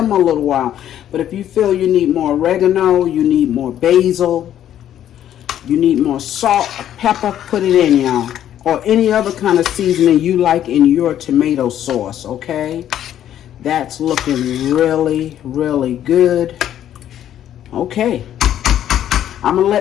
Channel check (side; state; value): right; quieter; 11.0 dB